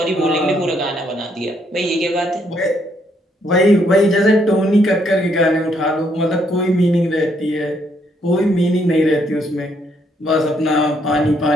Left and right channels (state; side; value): normal; both; correlation 0.72